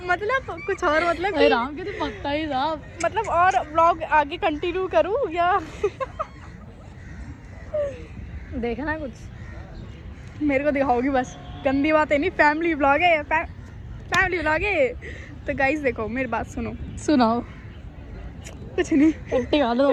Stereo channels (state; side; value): identical; both; correlation 1.00